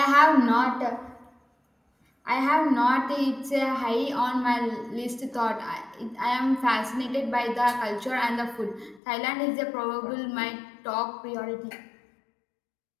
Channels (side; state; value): right; drops out; at 9.0 s